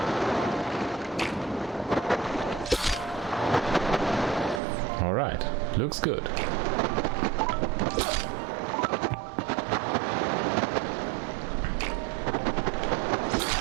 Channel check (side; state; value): left; drops out; at 4.6 s